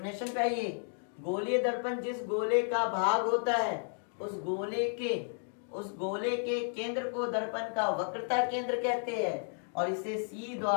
पे आइए। गोलीय दर्पण जिस गोले का भाग होता है उस गोले के केंद्र को दर्पण का वक्रता केंद्र कहते हैं और इसे सी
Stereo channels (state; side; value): silent; right; 56 dB below the other